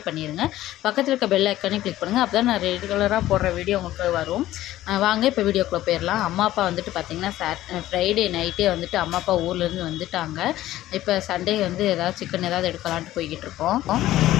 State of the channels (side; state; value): right; quieter; 14.7 dB